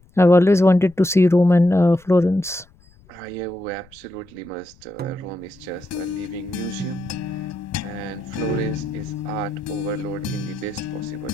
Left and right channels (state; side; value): noise; left; rumble, 28 dB below the sound